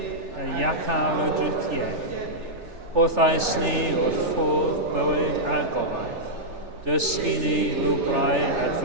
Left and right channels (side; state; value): left; late; 3.4 ms